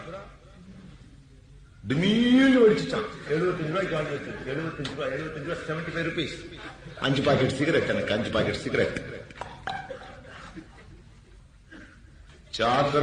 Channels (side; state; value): both; identical; correlation 1.00